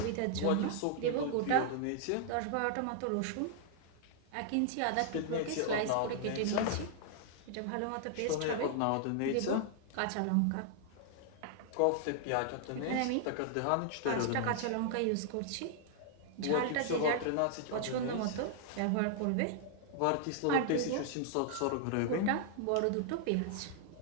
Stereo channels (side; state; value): both; different; correlation -0.01